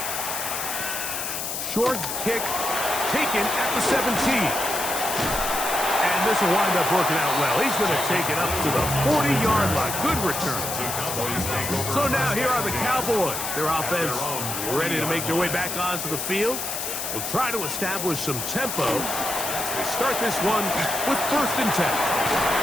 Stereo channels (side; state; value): left; noise; hiss, 4 dB below the sound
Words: Short kick taken at the 17. And this will wind up working out well. He's going to take it up to the 40-yard line. Good return. So now here are the Cowboys. Their offense ready to make their way back onto the field. We'll try to establish some tempo as they start this one with 1st and 10.